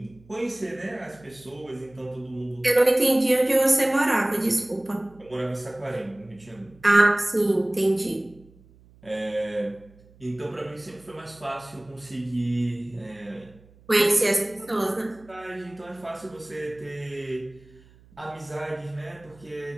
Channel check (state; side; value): noise; right; hum, 26 dB below the sound